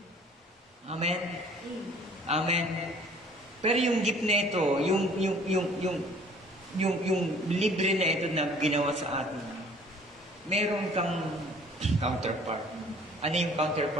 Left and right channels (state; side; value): normal; both; correlation 0.53